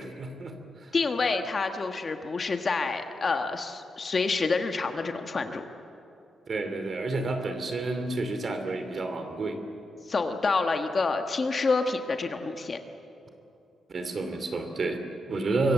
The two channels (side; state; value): both; normal; correlation 0.86